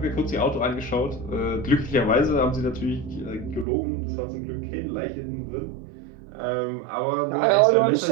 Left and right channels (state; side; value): drops out; left; at 3.7 s